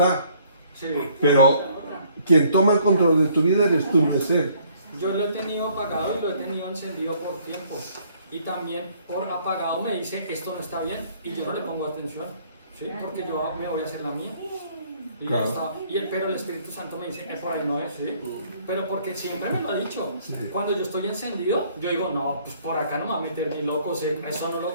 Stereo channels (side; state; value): both; inverted; correlation -0.62